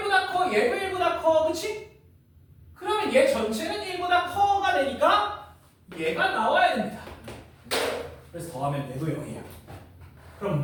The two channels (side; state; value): both; identical; correlation 1.00